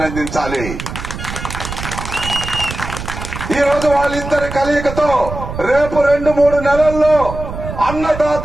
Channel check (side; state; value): right; noise; rumble, 8 dB below the sound